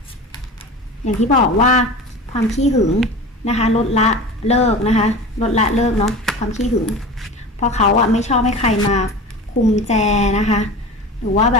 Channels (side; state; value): both; normal; correlation 0.33